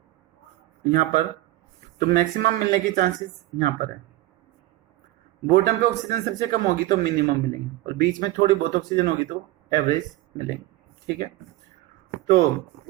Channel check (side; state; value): left; quieter; 16.8 dB